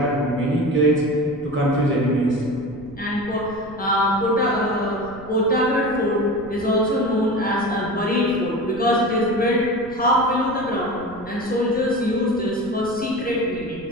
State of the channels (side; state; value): right; noise; rumble, 19 dB below the sound